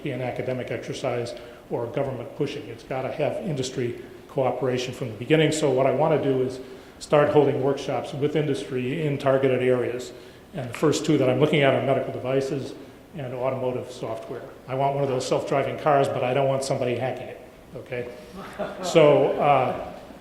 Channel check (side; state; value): both; identical; correlation 1.00